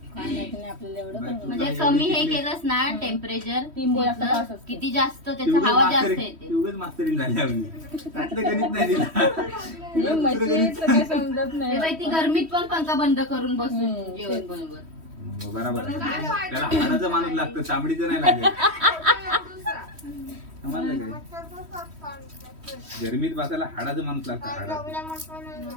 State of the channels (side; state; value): left; late; 3.1 ms